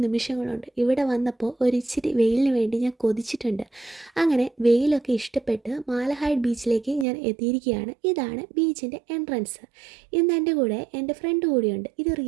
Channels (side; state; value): left; drops out; at 7.1 s